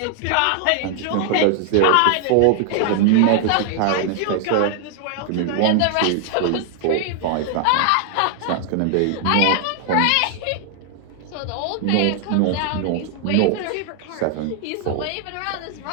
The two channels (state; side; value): different; both; correlation 0.00